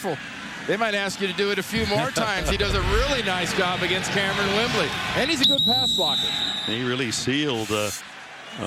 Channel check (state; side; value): identical; both; correlation 1.00